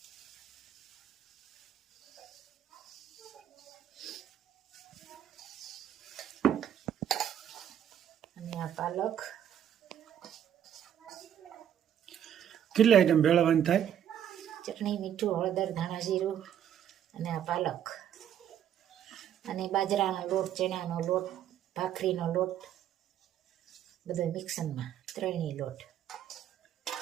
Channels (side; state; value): left; quieter; 9.9 dB